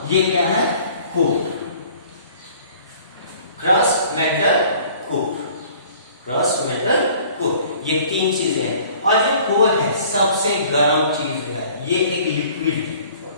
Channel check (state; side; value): inverted; both; correlation -0.52